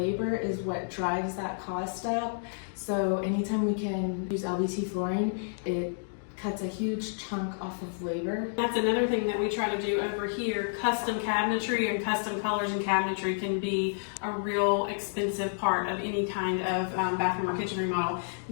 is what drives that cost up. So anytime we can use LVT flooring, it cuts a huge chunk off of labor. That's another thing that we try to do over here. Custom cabinetry and custom colors and cabinetry can be a real expensive part of any kind of bathroom or kitchen remodel.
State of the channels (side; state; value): right; silent; digital silence